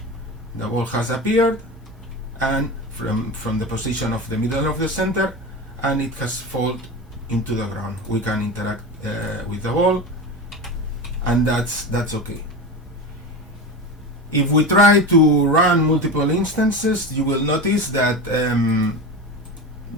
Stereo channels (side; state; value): both; normal; correlation 0.25